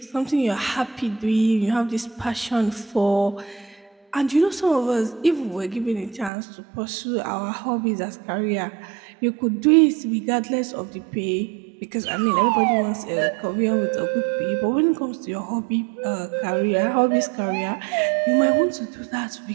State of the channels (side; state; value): left; drops out; at 6.3 s